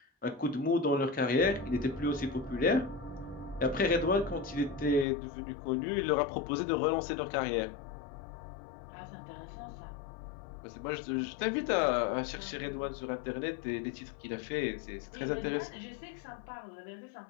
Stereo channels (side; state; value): right; drops out; at 5.1 s